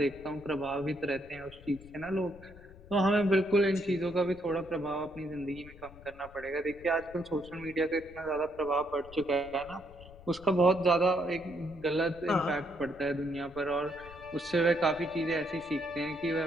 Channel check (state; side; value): noise; left; rumble, 19 dB below the sound